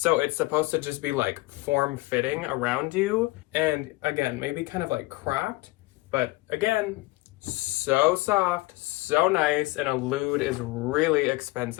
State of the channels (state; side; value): quieter; right; 21.4 dB